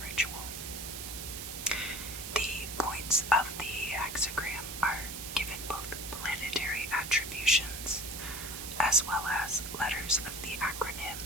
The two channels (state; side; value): noise; right; hiss, 7 dB below the sound